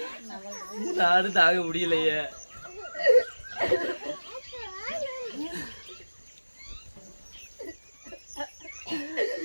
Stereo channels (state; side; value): inverted; both; correlation -1.00